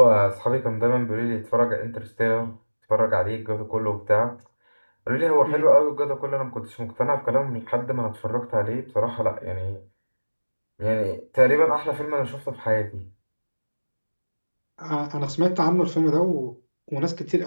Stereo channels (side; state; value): both; inverted; correlation -1.00